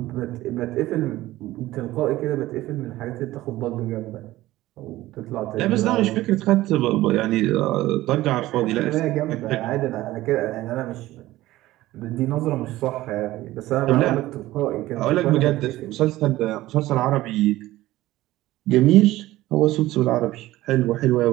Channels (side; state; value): left; quieter; 16.6 dB